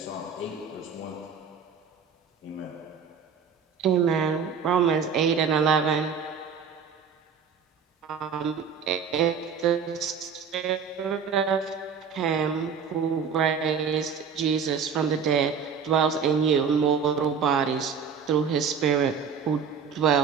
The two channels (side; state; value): left; quieter; 6.4 dB